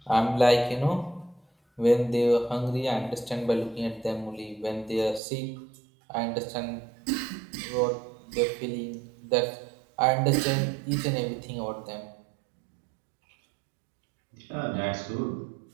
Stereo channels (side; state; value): left; drops out; at 5.2 s